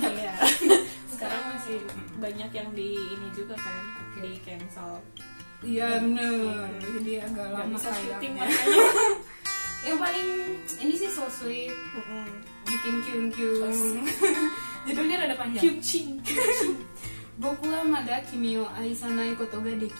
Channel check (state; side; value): inverted; both; correlation -1.00